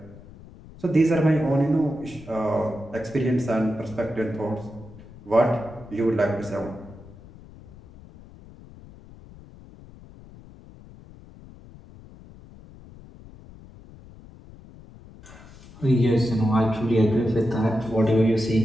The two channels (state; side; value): noise; left; rumble, 20 dB below the sound